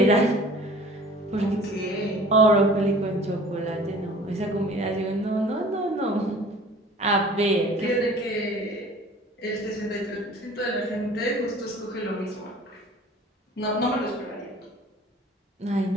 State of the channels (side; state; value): both; normal; correlation 0.47